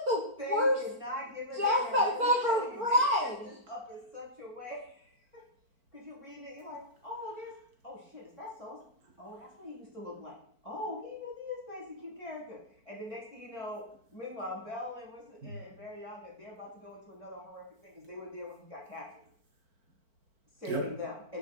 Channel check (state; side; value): late; left; 4.4 ms